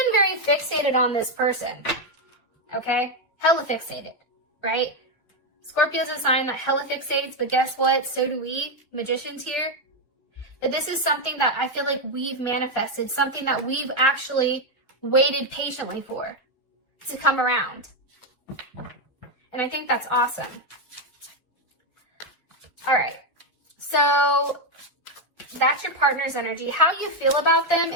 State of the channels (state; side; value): late; right; 1.8 ms